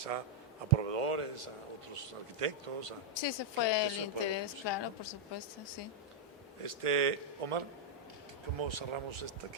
a proveedores, a otros arquitectos. Sí, ese que fue el se pueda interés, reproducir, claro, ¿no? por supuesto, sí. Omar, ¿cómo cerramos esta?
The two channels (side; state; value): both; normal; correlation -0.04